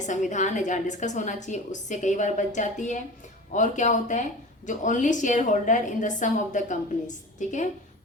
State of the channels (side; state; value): both; normal; correlation 0.35